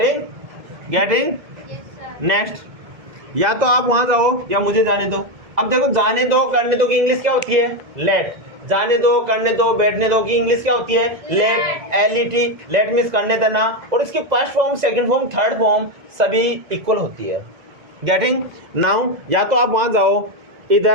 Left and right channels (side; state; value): left; late; 1.7 ms